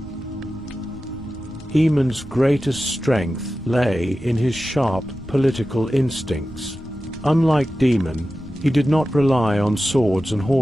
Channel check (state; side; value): normal; both; correlation 0.94